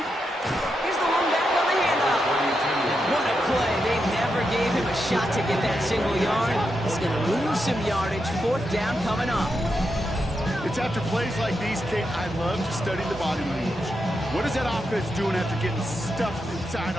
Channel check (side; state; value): both; normal; correlation 0.85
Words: Here's the one back on the handoff. What a play. They never gave him a shot to get that single yard. He's going to lose some yardage. Fourth down coming up. It's after plays like these, Kate, I love to study the body language. What is that offense doing after getting stuffed inside